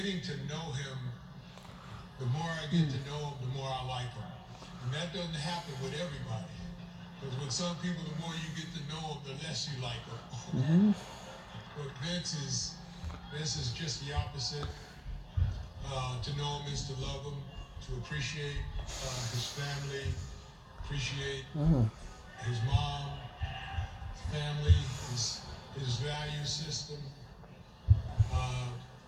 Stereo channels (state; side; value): identical; both; correlation 1.00